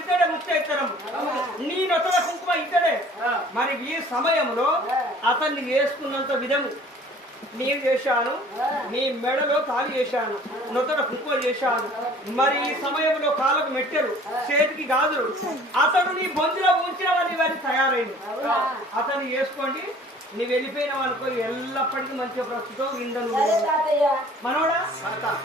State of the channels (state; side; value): normal; both; correlation 0.51